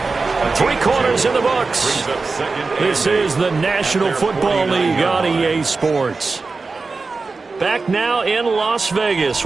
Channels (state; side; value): quieter; left; 4.1 dB